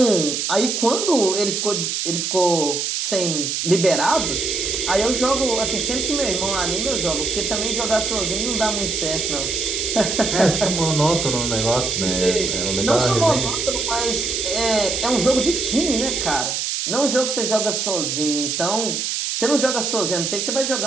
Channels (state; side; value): noise; right; hiss, 1 dB below the sound